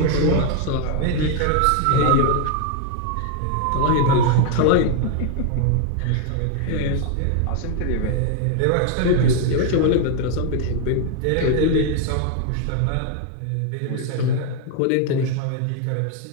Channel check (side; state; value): both; different; correlation 0.00